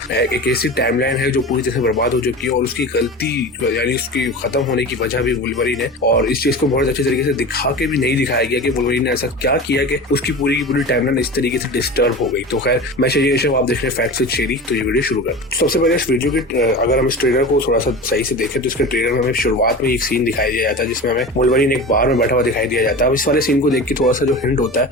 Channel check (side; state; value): both; normal; correlation 0.31